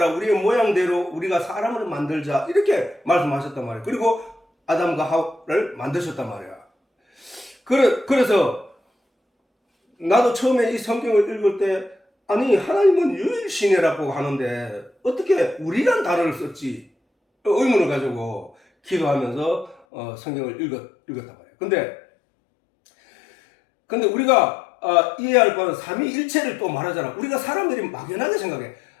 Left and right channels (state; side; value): drops out; right; at 19.8 s